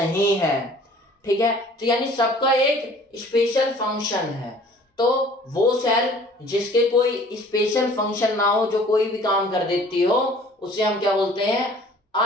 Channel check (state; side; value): normal; both; correlation 0.51